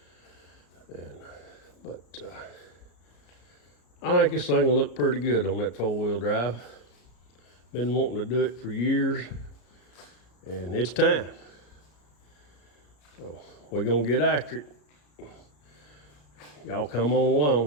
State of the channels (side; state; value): right; late; 34 ms